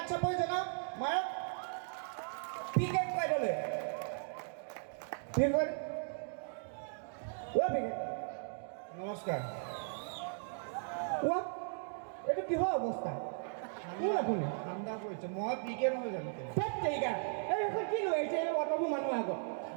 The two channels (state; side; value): silent; left; digital silence